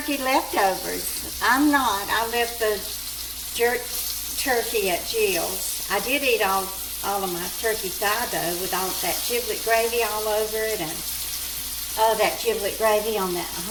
leftovers. I'm not. I left the jerk turkey at Jill's. I did eat all of my turkey thigh though, with all that giblet gravy all over it, and oh, that giblet gravy on that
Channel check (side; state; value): both; identical; correlation 1.00